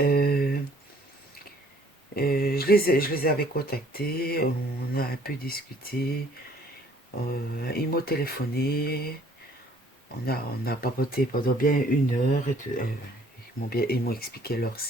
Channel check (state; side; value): normal; both; correlation 0.58